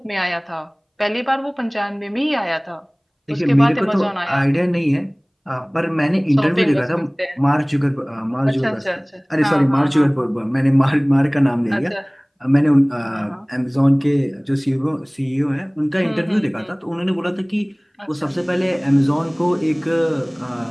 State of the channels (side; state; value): both; identical; correlation 1.00